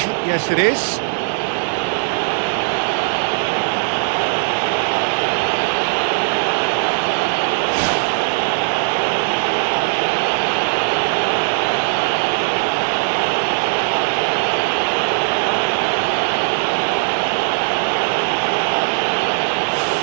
Yes, it is.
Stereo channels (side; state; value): left; silent; 60 dB below the other